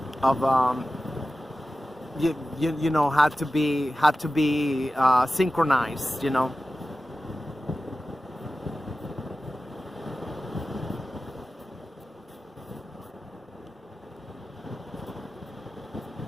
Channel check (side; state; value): both; normal; correlation 0.95